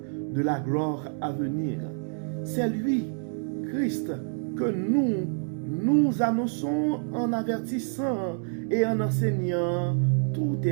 de la gloire à venir. C'est lui, Christ, que nous annonçons en avertissant et en enseignant tout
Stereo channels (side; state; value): left; silent; 59 dB below the other